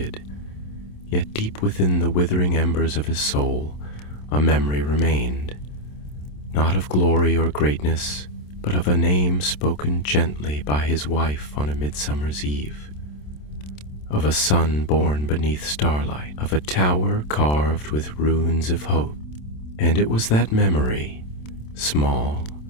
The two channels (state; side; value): late; right; 27 ms